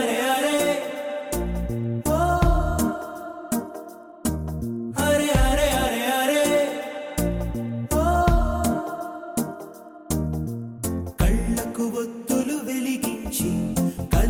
అరే ఓ అరే అరే అరే అరే ఓ కళ్ళకు ఒత్తులు వెలిగించి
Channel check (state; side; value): identical; both; correlation 1.00